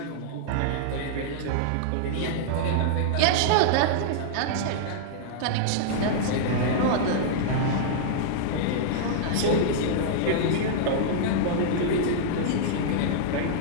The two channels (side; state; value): both; different; correlation -0.02